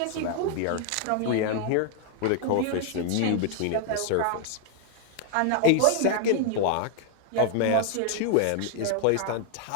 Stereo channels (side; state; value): both; different; correlation 0.00